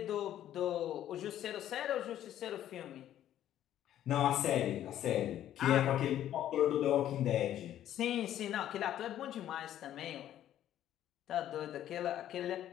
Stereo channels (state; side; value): quieter; right; 11.7 dB